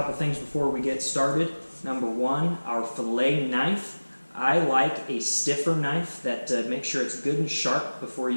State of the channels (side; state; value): both; inverted; correlation -1.00